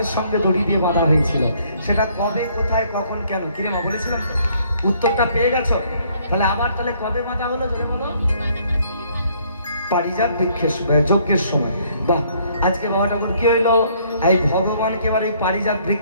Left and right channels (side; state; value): both; inverted; correlation -0.64